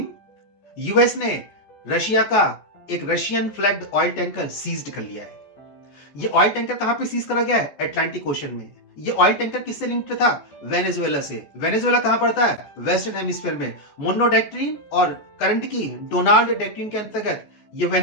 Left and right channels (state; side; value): late; right; 14 ms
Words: यूएस ने रशिया का एक Russian flagged oil tanker seized कर लिया है। ये ऑयल टैंकर कहां पे सीज करा गया है? अटलांटिक ओशन में। ये ऑयल टैंकर किससे लिंक्ड था? वेनेजुएला से। वेनेजुएला कहां पड़ता है? वेस्टर्न हेमिस्फीयर में। मोनो डॉक्ट्रिन और करंट की डोनाल्ड डॉक्ट्रिन के अंतर्गत ये